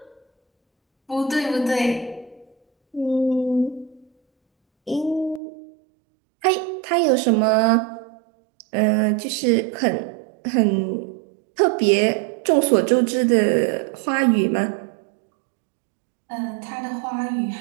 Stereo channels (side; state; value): left; drops out; at 5.4 s